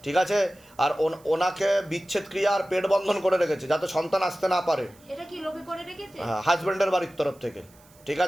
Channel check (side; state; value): right; noise; hiss, 28 dB below the sound